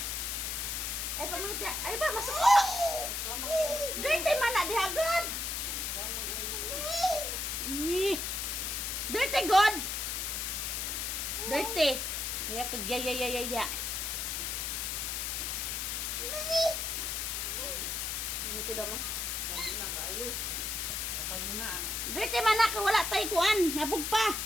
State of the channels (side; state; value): left; noise; hiss, 1 dB below the sound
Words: Ay, pamulit ya. Ay ba, masuk ko. Dirty man na, di agad. Dirty God. Dirty. Kaya kagyayayayay dia. Dito daw mo. Kapag na kayo. Kapag na ang Dirty man na, wala tayo kuan. Nabog pa.